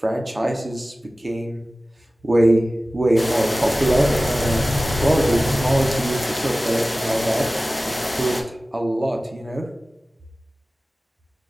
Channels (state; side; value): normal; both; correlation 0.97